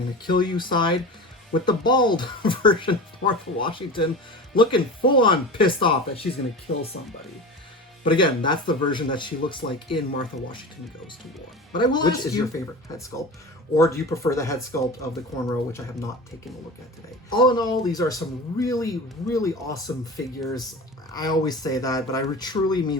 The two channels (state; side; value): normal; both; correlation 0.31